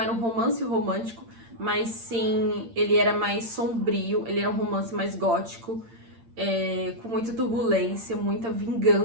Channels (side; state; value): left; late; 8.8 ms